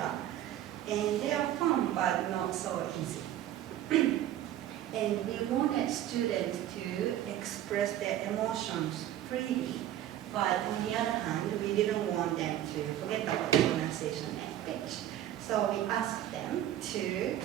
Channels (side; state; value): left; quieter; 12.4 dB